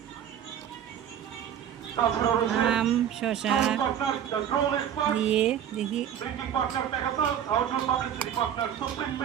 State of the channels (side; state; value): left; quieter; 9.5 dB